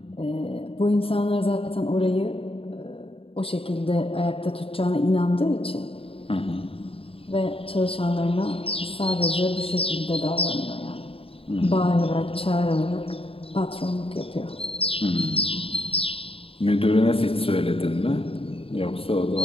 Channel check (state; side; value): late; right; 0.27 ms